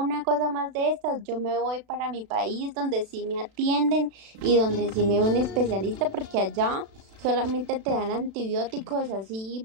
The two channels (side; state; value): left; late; 36 ms